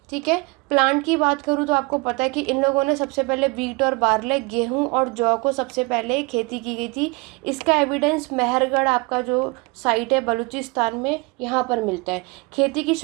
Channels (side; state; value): left; quieter; 27.3 dB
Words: ठीक है। प्लांट की बात करूँ तो आपको पता है कि इन लोगों ने सबसे पहले वीट और बार्ले, गेहूं और जौ को सबसे पहले खेती की गई थी। इसका एविडेंस मेहरगढ़ आपका जो साइट है बलूचिस्तान में, यहाँ पर मिलता है। खेती की